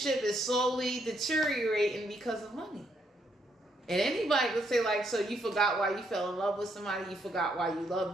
is slowly deteriorating because of money. And anybody could say like, so you forgot why you fell in love with somebody, you forgot why you loved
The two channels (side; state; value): both; normal; correlation 0.74